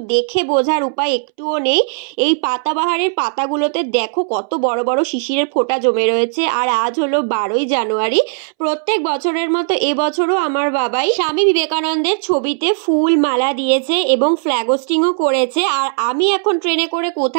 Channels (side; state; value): left; silent; 67 dB below the other